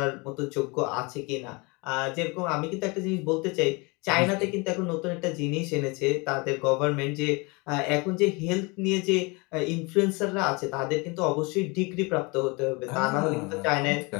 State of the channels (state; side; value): quieter; right; 28.0 dB